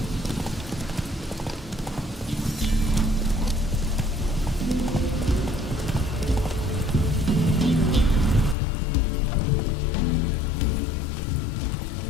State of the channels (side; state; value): right; drops out; at 8.6 s